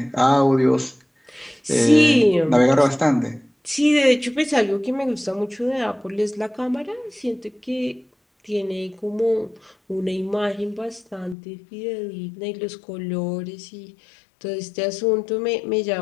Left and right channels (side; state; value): right; drops out; at 11.4 s